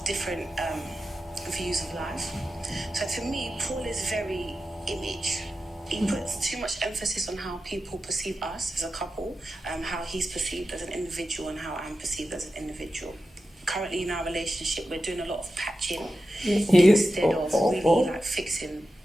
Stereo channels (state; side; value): normal; both; correlation 0.91